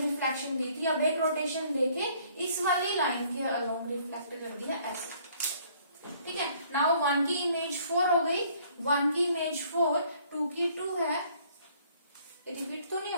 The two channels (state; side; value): inverted; both; correlation -0.60